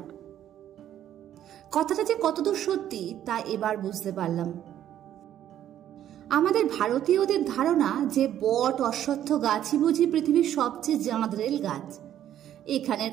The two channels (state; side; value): quieter; left; 11.2 dB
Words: কথাটা যে কতদূর সত্যি তা এবার বুঝতে পারলাম। আমাদের ভারতীয়দের ধারণা যে বট, অশ্বত্থ গাছই বুঝি পৃথিবীর সবচেয়ে জাঁদরেল গাছ। এখানের